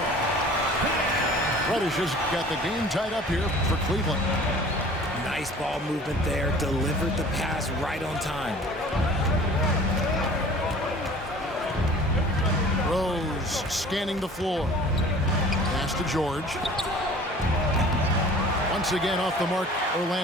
Reddish has got the game tied up here for Cleveland. Nice ball movement there. Delivered the pass right on time. Rose scanning the floor. Pass to George. Once again off the mark,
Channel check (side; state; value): both; normal; correlation 0.46